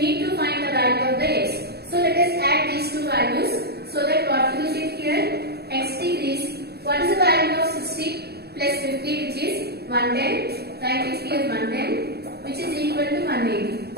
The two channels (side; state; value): left; late; 0.47 ms